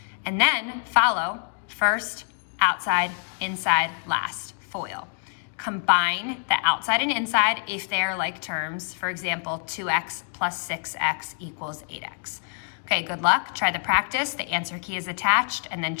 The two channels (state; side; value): silent; right; 57 dB below the other